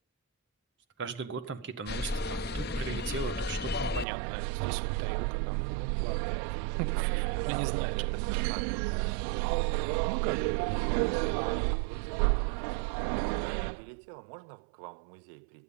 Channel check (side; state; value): left; drops out; at 4.0 s